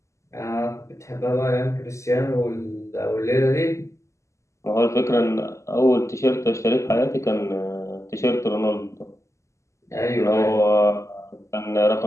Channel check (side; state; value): right; late; 0.14 ms